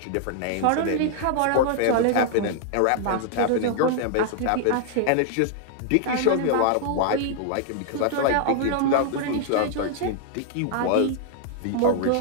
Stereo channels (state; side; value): different; both; correlation 0.00